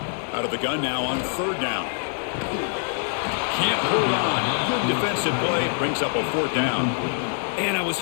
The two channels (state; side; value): silent; right; 62 dB below the other